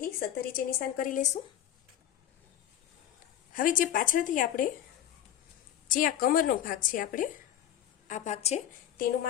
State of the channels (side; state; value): right; quieter; 11.1 dB